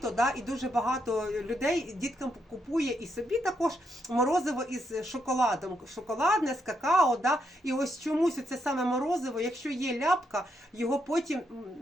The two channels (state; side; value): normal; both; correlation 0.79